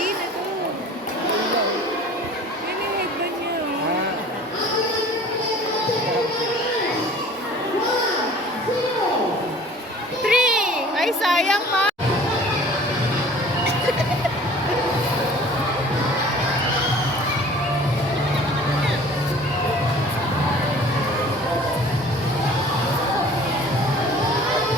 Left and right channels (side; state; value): both; normal; correlation 0.47